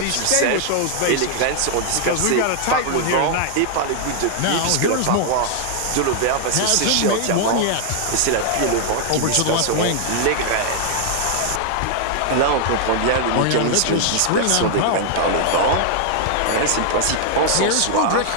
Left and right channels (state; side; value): different; both; correlation 0.00